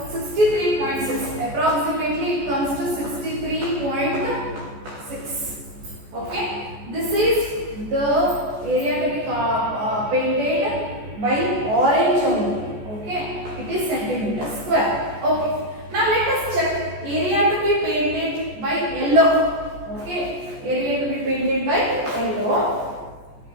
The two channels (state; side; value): late; left; 14 ms